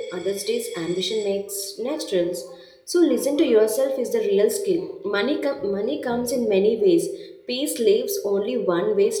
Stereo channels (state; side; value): identical; both; correlation 1.00